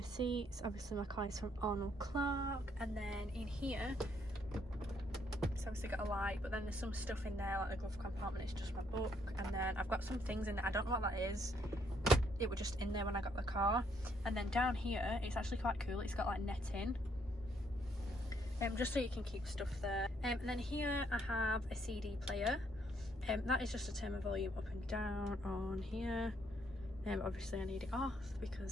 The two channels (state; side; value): normal; both; correlation 0.71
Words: seats, obviously my car is from Arnold Clark, and then in here it's obviously got a light, but then there's some stuff in there, like the glove compartment, it's just my book, and then I've got some things in there, I don't know what that is. It was just in there when I got the car. And then down here, it's actually quite cool, it's got like netting, just so you can keep stuff there. And then here I have a CD player, that is just to turn my volume up and down on here. Obviously I need it off